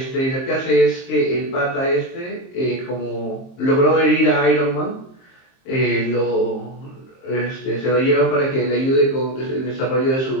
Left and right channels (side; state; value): right; late; 23 ms